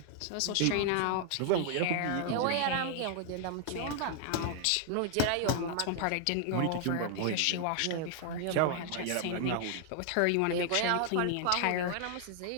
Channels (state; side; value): different; both; correlation 0.00